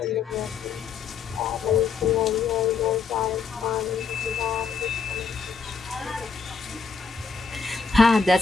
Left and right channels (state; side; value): quieter; right; 5.4 dB